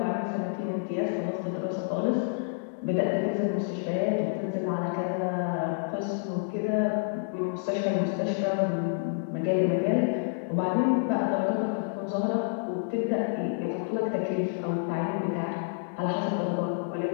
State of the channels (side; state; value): right; silent; digital silence